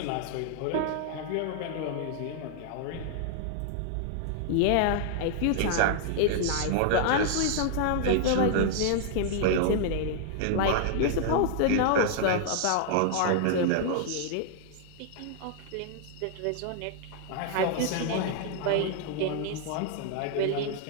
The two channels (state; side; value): different; both; correlation -0.01